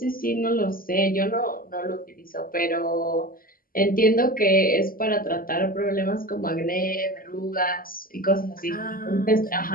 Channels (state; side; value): late; right; 0.42 ms